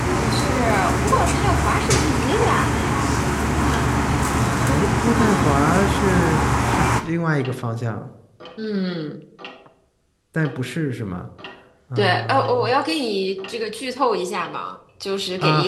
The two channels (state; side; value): identical; both; correlation 1.00